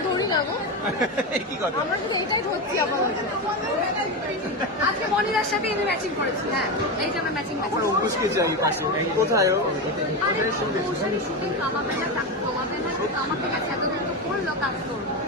ধরি না গো, কি কথা? আমরা শুধু এইটাই ধরছি। আবার আজকে মনিরার সাথে আমি ম্যাচিং করেছি। হ্যাঁ এই যে আমরা ম্যাচিং আমার অঙ্কুশকে চাই পাশে। কোথায় ও? শুটিং কামাবে না, কমাবে না, কামাতে গেছে, এতদিন তো করলো কাজ করবো,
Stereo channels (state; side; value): normal; both; correlation 0.16